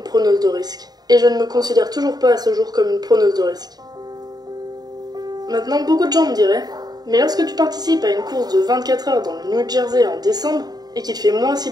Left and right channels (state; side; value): late; left; 0.19 ms